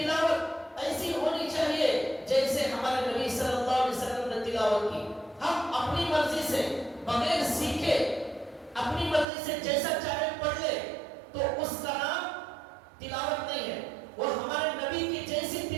ایسی ہونی چاہیے جیسے ہمارے نبی صلی اللہ علیہ وسلم نے تلاوت کی. ہم اپنی مرضی سے بغیر سیکھے اپنی مرضی سے جیسا چاہے پڑھ لے تو اس کا نام تلاوت نہیں ہے. وہ ہمارے نبی کی جیسی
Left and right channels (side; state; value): left; drops out; at 9.2 s